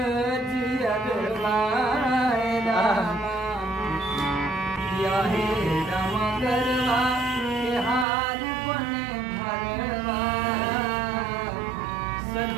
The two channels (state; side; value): drops out; left; at 8.1 s